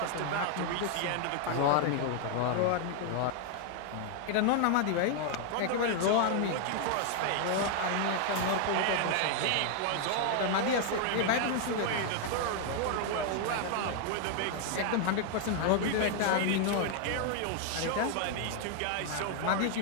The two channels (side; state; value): both; different; correlation 0.00